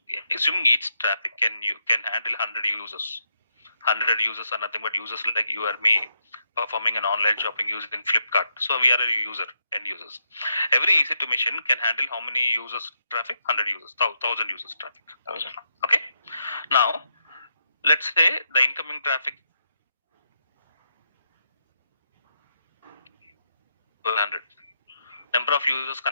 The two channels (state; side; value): inverted; both; correlation -0.81